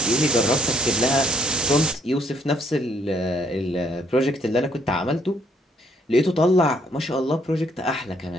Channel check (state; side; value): normal; both; correlation 0.67